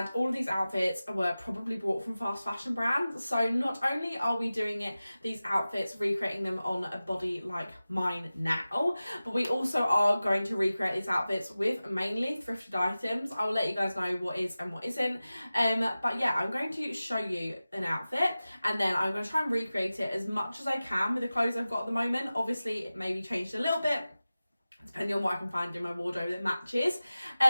all of these outfits were probably bought from fast fashion brands. So not only are we doing these outfits, recreating them on a body like mine now, but we also are going to recreate these outfits with mainly thrifted items. I will let you guys know what is and what isn't. But yeah, I'm going to show you an outfit, and then I'm going to try and recreate it as much as I can with the clothes I've got at the moment. Obviously it may be changed a little bit depending on what I can find in my wardrobe that matches,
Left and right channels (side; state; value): both; inverted; correlation -0.96